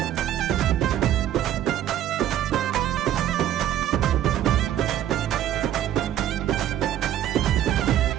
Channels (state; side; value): quieter; left; 11.6 dB